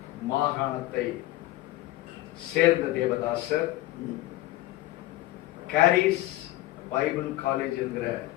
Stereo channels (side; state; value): right; quieter; 16.9 dB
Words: மாகாணத்தை சேர்ந்த தேவதாசர் கேரிஸ் பைபிள் காலேஜ் என்கிற